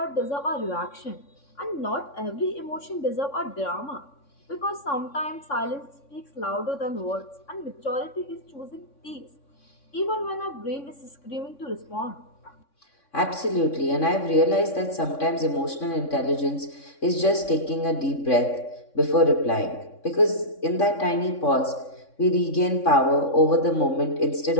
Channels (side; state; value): right; late; 3.6 ms